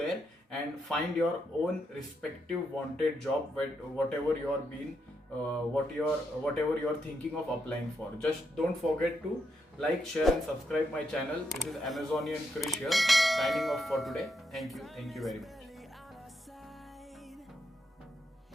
and find your own respective wanted job, whatever you are being whatever you are thinking of applying for. Just don't forget to like, share and subscribe my channel. This is Amazonian Krish here, signing off for today. Thank you very much.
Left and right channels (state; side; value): normal; both; correlation 0.81